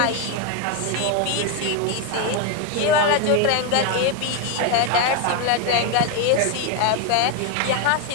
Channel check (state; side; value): different; both; correlation 0.02